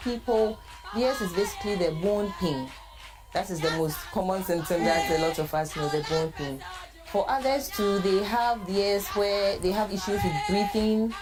theirs is basically the bone pain. That is the most common symptom that a lot of us know, the bone pain. For others too, they have theirs where they have issues with breathing,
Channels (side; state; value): both; identical; correlation 1.00